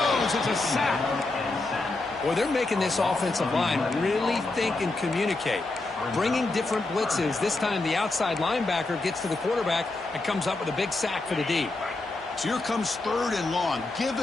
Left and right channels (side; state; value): right; quieter; 3.1 dB